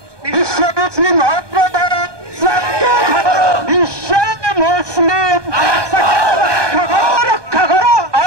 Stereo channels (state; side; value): late; left; 1.2 ms